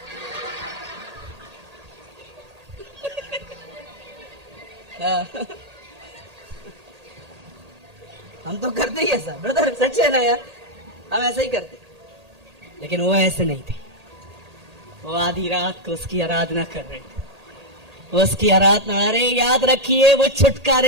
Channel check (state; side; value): late; left; 1.8 ms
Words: हम तो करते ही ऐसा ब्रदर, सच है ना यार, हम ऐसा ही करते। लेकिन वो ऐसे नहीं थे। वो आधी रात को उसकी आराधना कर रहे थे। वो उसकी आराधना, अरे याद रखिए, वो